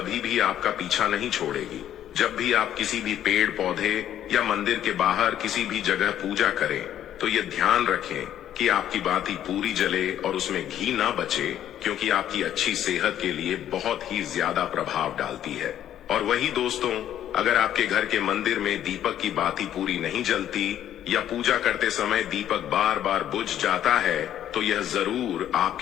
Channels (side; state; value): right; quieter; 11.1 dB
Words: भी आपका पीछा नहीं छोड़ेगी। जब भी आप किसी भी पेड़ पौधे या मंदिर के बाहर किसी भी जगह पूजा करें, तो ये ध्यान रखें कि आपकी बाती पूरी जले और उसमें घी ना बचे, क्योंकि आपकी अच्छी सेहत के लिए बहुत ही ज्यादा प्रभाव डालती है। और वही दोस्तों, अगर आपके घर के मंदिर में दीपक की बाती पूरी नहीं जलती या पूजा करते समय दीपक बार बार बुझ जाता है, तो यह जरूर